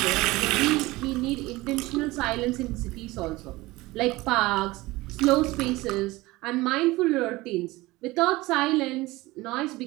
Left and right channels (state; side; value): quieter; left; 20.1 dB